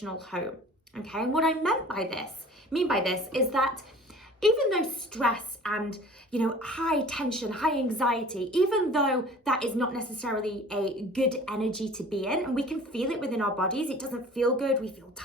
home. Okay, and what I mean by this is that even though stress and, high tension, high anxiety, even though that is not necessarily a good energy to be in, and we can feel it within our bodies, it doesn't feel good, we feel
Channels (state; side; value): normal; both; correlation 0.46